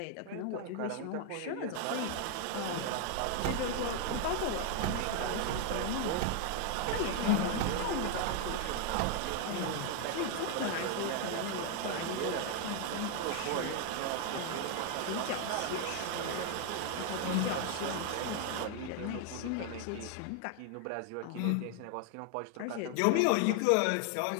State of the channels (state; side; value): different; both; correlation 0.00